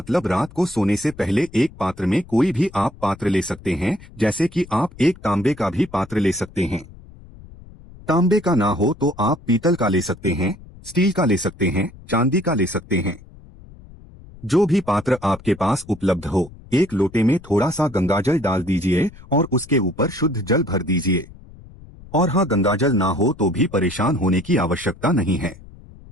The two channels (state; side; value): noise; left; rumble, 20 dB below the sound